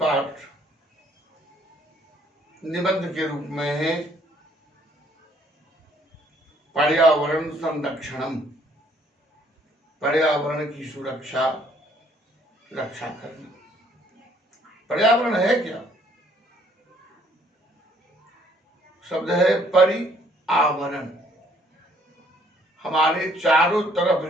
निबंध के रूप में है पर्यावरण संरक्षणम। पर्यावरण की सुरक्षा, रक्षा करना। पर्यावरण है क्या? शब्द है परिआवरण। हमारे चारों तरफ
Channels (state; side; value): normal; both; correlation 0.63